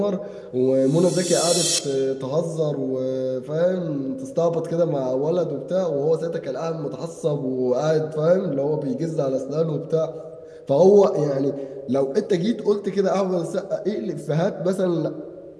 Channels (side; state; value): both; identical; correlation 1.00